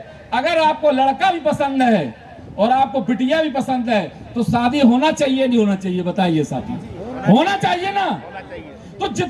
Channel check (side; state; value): both; identical; correlation 1.00